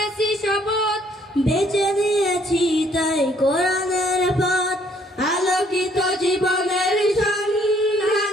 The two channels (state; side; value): normal; both; correlation 0.64